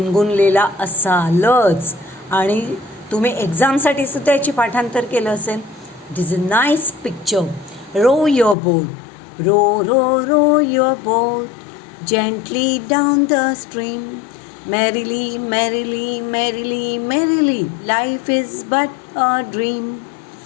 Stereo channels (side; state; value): right; drops out; at 8.6 s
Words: असालच आणि तुम्ही एक्झामसाठी सुद्धा याची पाठांतर केलं असेल. This is a nice picture. Row your boat, row row row your boat gently down the stream, merrily, merrily, merrily, merrily, life is but a dream,